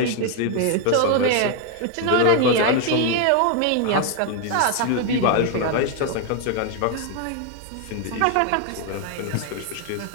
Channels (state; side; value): different; both; correlation 0.01